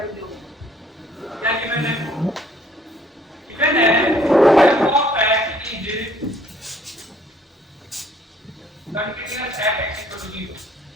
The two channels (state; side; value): normal; both; correlation 0.61